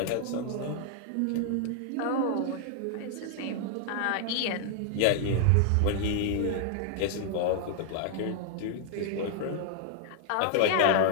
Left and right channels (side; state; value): both; different; correlation 0.00